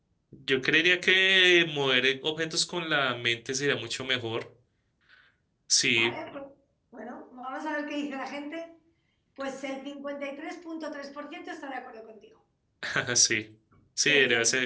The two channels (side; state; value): both; identical; correlation 1.00